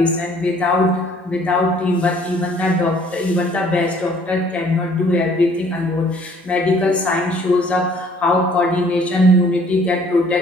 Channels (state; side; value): normal; both; correlation 0.58